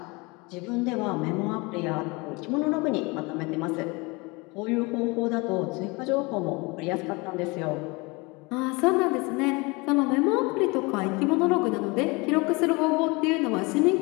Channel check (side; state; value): right; quieter; 26.4 dB